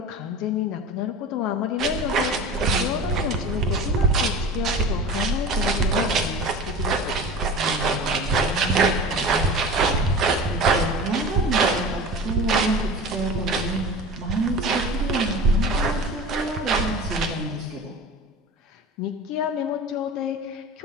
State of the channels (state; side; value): normal; both; correlation 0.35